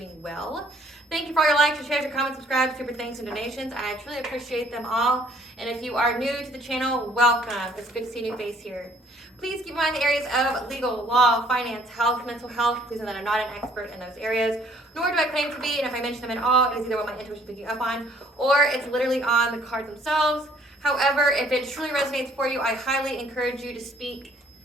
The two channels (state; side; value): normal; both; correlation 0.61